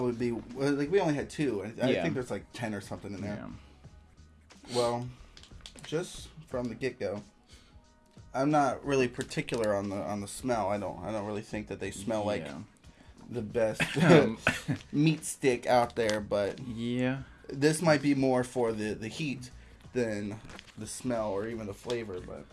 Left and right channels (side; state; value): both; identical; correlation 1.00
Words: be like we only had 2. I think there's like 10 or something in there. Yeah. Well, just from the get-go, I'm not really particular on the smell. I don't really think that they smell like the best meat stick out there, but this might be more for the heat than the smell or even the flavor. But